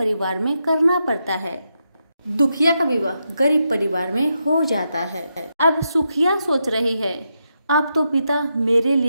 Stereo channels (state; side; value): inverted; both; correlation -0.84